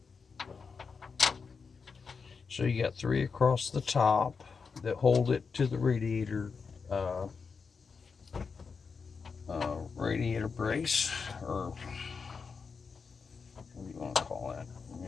So you got 3 across the top that hold it to the radiator brace, or what do you want to call that?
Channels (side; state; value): right; quieter; 5.3 dB